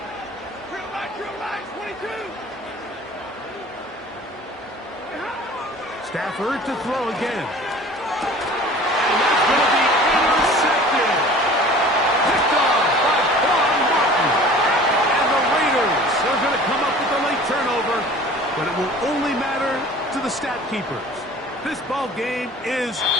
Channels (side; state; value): both; normal; correlation 0.45